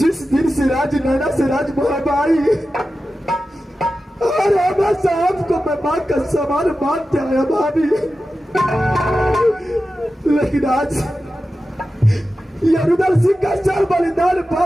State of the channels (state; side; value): normal; both; correlation 0.93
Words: दिन से राज नैना से राज मोहबाई और हमेशा आपको मैं माँ का समान मानते आया भाभी, लेकिन आज ये रुदल सिंह का चाल बलिदान